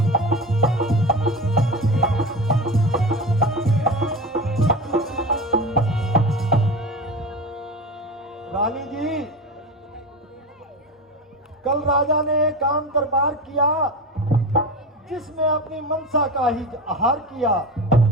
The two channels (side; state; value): both; normal; correlation 0.26